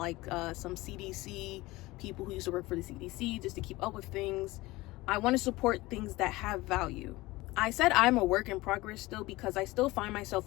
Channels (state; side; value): quieter; right; 20.0 dB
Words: some CDC people who used to work for the CDC just to keep up with things. I want to support things that have value. I said I'm a work in progress still, because I still find